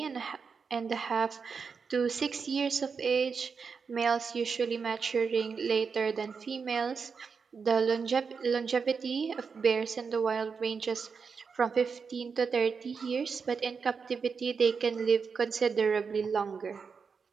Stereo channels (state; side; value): quieter; left; 5.6 dB